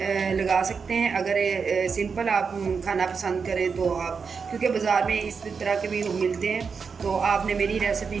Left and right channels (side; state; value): left; quieter; 5.6 dB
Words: लगा सकते हैं। अगर सिंपल आप खाना पसंद करें तो आप, क्योंकि बाज़ार में इस तरह के भी मिलते हैं, तो आपने मेरी रेसिपी